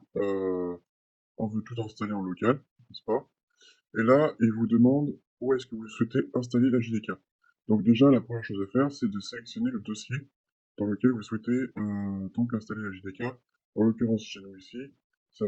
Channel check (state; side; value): identical; both; correlation 1.00